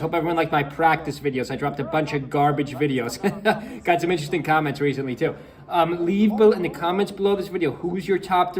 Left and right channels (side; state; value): both; identical; correlation 1.00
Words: everyone liked my practice videos. I dropped a bunch of garbage videos. Got some interesting comments recently too. Leave in the comments below this video, who's your top